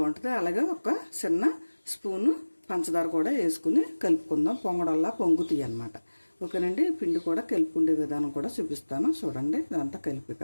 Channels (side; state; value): both; inverted; correlation -1.00